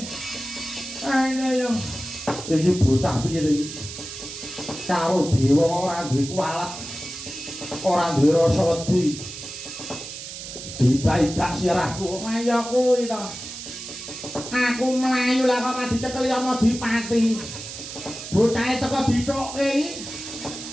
ayo iki bocah piye iki karo dewa ora duwe kualat ora duwe rasa wedi didak-idak sirahku ayo kuwi to aku mlayu lah kok dicekel ya Adipati bocahe teko dithokke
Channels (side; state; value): right; noise; hiss, 10 dB below the sound